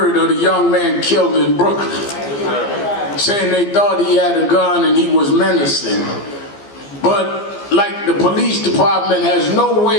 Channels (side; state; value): right; late; 15 ms